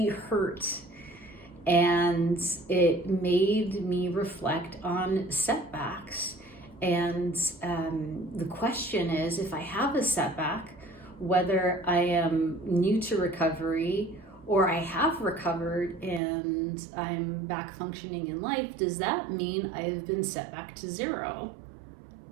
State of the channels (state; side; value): drops out; left; at 16.2 s